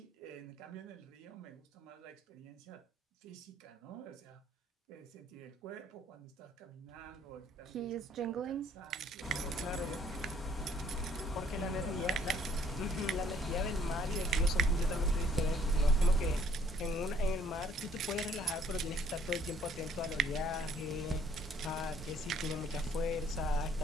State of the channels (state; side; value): normal; both; correlation 0.62